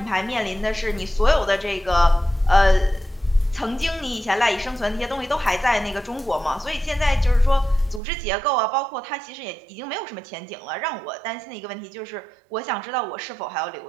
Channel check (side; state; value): left; drops out; at 8.0 s